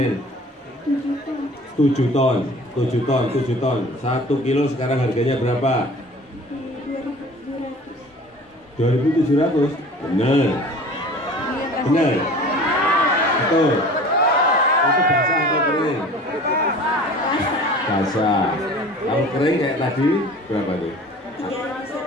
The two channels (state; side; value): normal; both; correlation 0.44